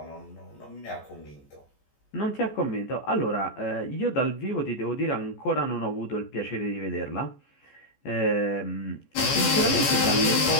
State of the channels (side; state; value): right; late; 14 ms